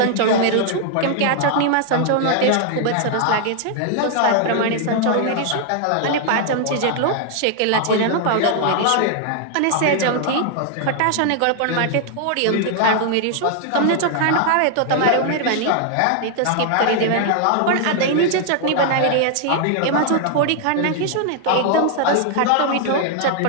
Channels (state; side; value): different; both; correlation 0.00